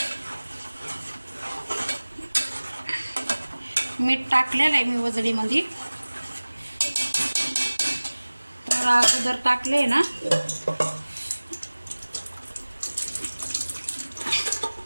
मीठ टाकलेलं आहे मी वजडीमध्ये. तर अगोदर टाकले ना,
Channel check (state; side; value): inverted; both; correlation -1.00